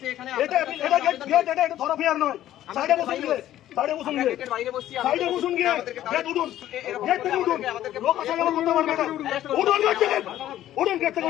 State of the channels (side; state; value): right; quieter; 12.9 dB